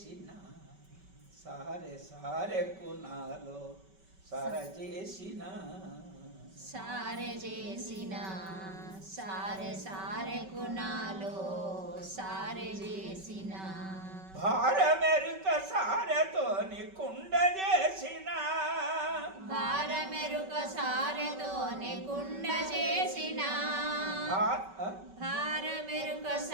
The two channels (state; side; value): late; left; 5.2 ms